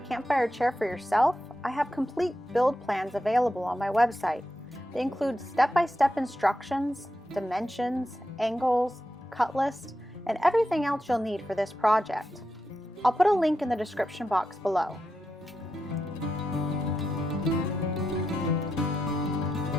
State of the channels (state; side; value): normal; both; correlation 0.87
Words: campfire chair for yourself, I have complete build plans available on my website. They include step-by-step instructions, dimensions, angles, cut list, and everything else you'll need for this project. I'll put a link in the description box below.